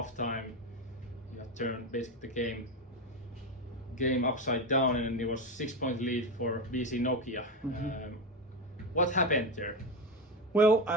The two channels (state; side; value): normal; both; correlation 0.16